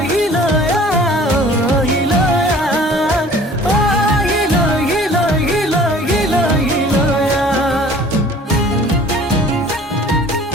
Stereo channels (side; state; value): both; normal; correlation 0.49